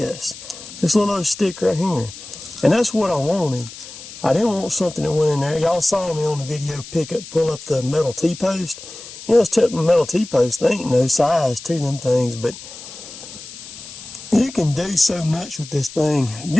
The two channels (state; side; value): noise; left; hiss, 15 dB below the sound